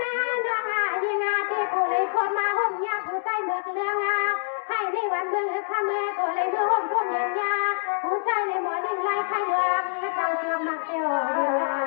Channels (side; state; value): right; silent; digital silence